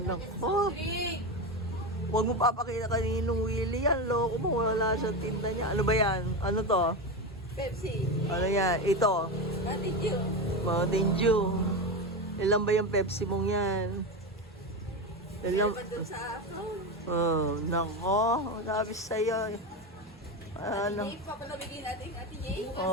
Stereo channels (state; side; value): normal; both; correlation 0.17